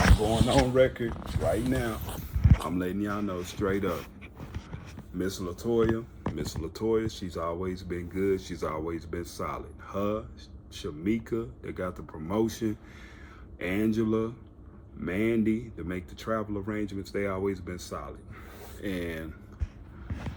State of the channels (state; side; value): identical; both; correlation 1.00